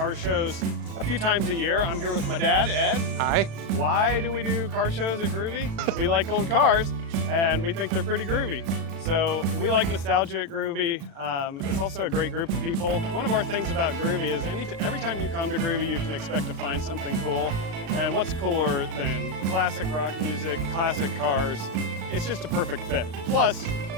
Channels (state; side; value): late; left; 36 ms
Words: shows a few times a year. I'm here with my dad, Ed. Hi. Why do we do car shows at Groovy? We like old cars and we think they're pretty groovy. So we like nostalgia at Groovy. It's also a great group of people. One of our things about Groovy is every time you come to Groovy, you can expect to find something cool. And what's cooler than classic rock music, classic cars? It's just a perfect fit. Plus,